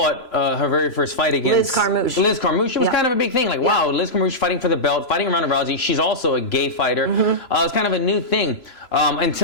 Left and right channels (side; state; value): right; late; 3.0 ms